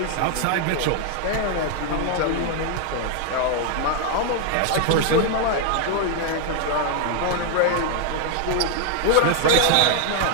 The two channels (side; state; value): both; different; correlation 0.00